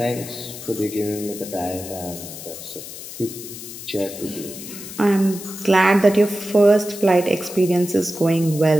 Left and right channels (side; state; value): left; noise; hiss, 12 dB below the sound